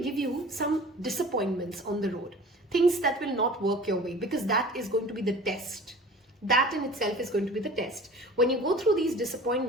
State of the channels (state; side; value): normal; both; correlation 0.42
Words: give you some disappointments on the road, things that will not work your way, because that is going to be the test. That in itself is going to be the test. When you go through these